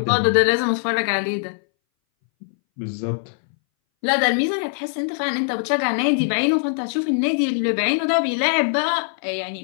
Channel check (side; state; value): right; silent; 62 dB below the other